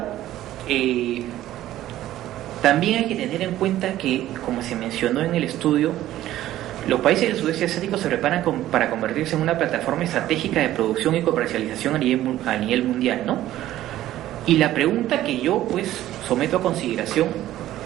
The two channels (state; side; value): quieter; left; 13.8 dB